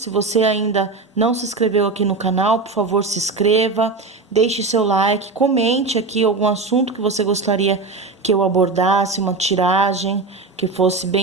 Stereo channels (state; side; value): quieter; left; 3.9 dB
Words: você ainda não se inscreveu aqui no canal, por favor, se inscreva, deixe seu like, comente aqui algum assunto que você gostaria que eu abordasse, uma tiragem que fosse